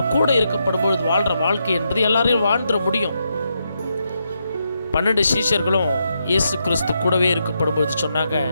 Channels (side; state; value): both; inverted; correlation -0.82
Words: கூட இருக்கப்படும் பொழுது வாழ்கிற வாழ்க்கை என்பது எல்லாரையும் வாழ்ந்துட முடியும். 12 சீஷர்களும் இயேசு கிறிஸ்து கூடவே இருக்கப்படும் பொழுது சொன்னாங்க,